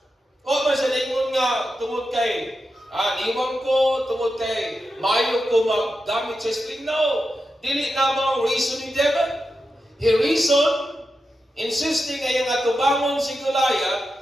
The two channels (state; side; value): normal; both; correlation 0.89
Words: O ba sa lingon nga tungod kay niwang ko, tungod kay mayo ko maggamit sa string? No. Dili na mo reason ni David. He reasoned, insisting ay ang atubangon si Goliath,